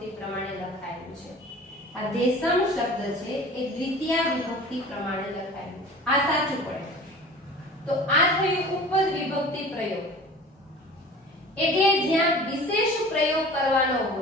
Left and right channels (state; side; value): normal; both; correlation 0.41